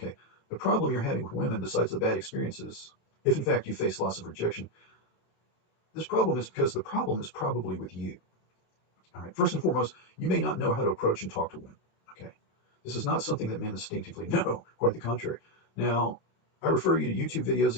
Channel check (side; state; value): right; late; 27 ms